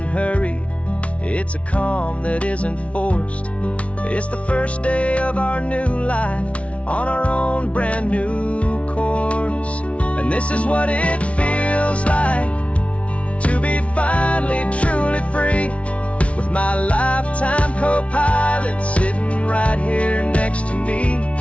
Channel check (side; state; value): right; late; 0.063 ms